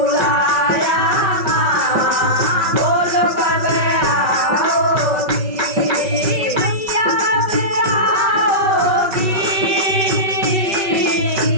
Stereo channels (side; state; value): left; late; 5.4 ms